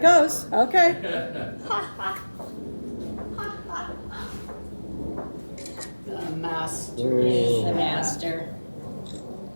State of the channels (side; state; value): both; inverted; correlation -1.00